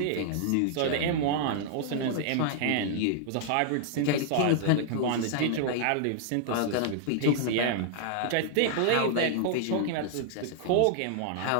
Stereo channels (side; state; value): both; different; correlation -0.01